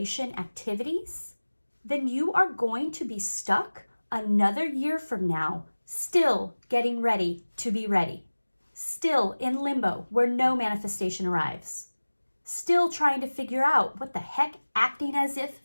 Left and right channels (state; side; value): inverted; both; correlation -1.00